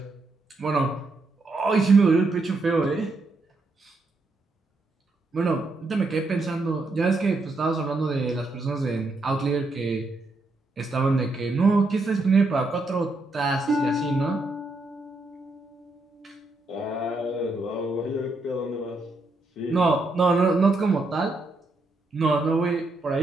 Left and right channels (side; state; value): left; quieter; 3.1 dB